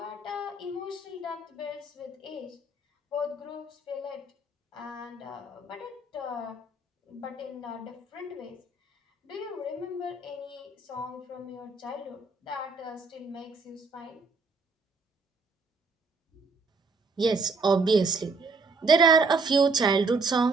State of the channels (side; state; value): left; quieter; 3.6 dB